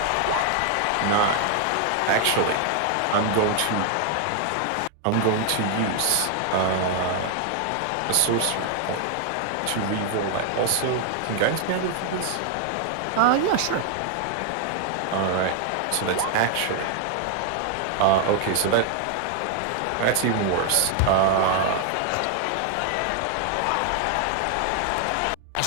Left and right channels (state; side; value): different; both; correlation 0.00